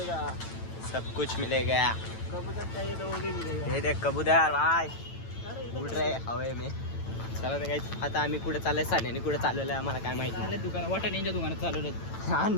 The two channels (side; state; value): right; late; 9.0 ms